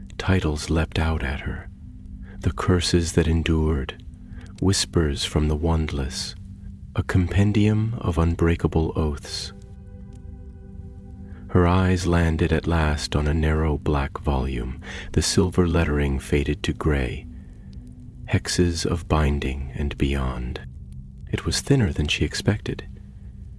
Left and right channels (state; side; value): identical; both; correlation 1.00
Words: Titles leapt out at her. The Curses That Endured, Whispers from the Wandless, a compendium of unbreakable oaths. Her eyes landed at last on a narrow black volume, the silver lettering faded to gray. Hexes of Binding and Beyond. It was thinner than she expected.